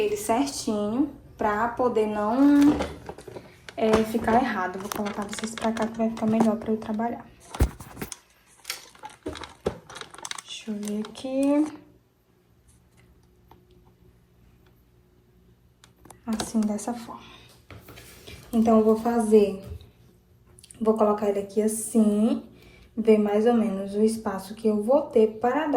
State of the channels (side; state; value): both; identical; correlation 1.00